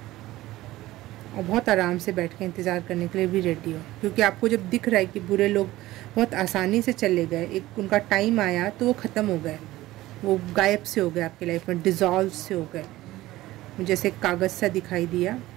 और बहुत आराम से बैठ के इंतज़ार करने के लिए भी रेडी हो, क्योंकि आपको जब दिख रहा है कि बुरे लोग बहुत आसानी से चले गए, एक उनका टाइम आया तो वो ख़त्म हो गए, वो गायब से हो गए आपकी लाइफ में, डिज़ॉल्व से हो गए। मुझे जैसे एक कागज़ सा दिखाई दिया,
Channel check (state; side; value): quieter; left; 16.8 dB